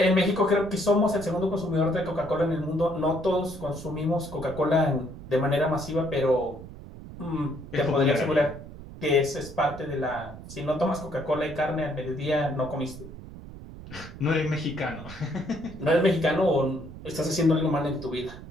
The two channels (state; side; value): noise; right; rumble, 14 dB below the sound